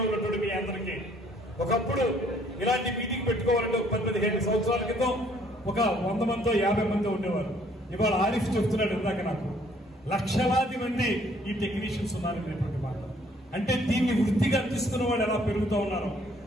ఉన్నటువంటి మీ అందరికీ ఒకప్పుడు ఇలాంటి మీటింగ్ పెట్టుకోవాలంటే 10-15 సంవత్సరాల క్రితం ఒక 100 మందో 50 మందో ఉండేవారు. ఇవాళ ఆరిఫ్ చెప్తున్నాడు ఇందాక నాకు, లక్షలాది మంది ఈ టెక్నీషియన్స్ ఉన్నారనేటువంటి మాట. అంటే దీన్ని వృత్తిగా తీసుకున్న వాళ్ళు ఎలా పెరుగుతూ ఉన్నారో,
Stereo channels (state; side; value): normal; both; correlation 0.62